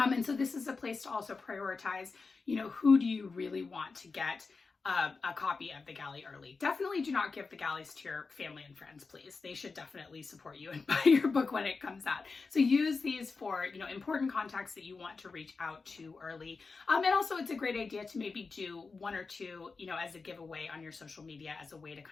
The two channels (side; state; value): right; quieter; 4.4 dB